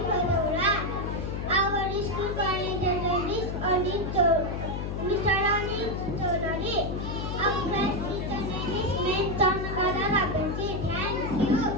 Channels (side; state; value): left; noise; hum, 3 dB below the sound